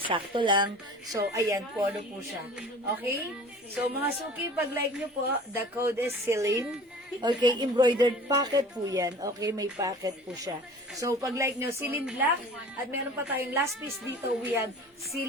sakto lang. So, ayan, polo po siya. Okay? So, mga suki, pag like nyo po, the code is Celine. Okay, embroidered pocket po yan. Okay, may pocket po siya. So, pag like nyo, Celine Black, at meron pa tayong last piece dito, we have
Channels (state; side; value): normal; both; correlation 0.43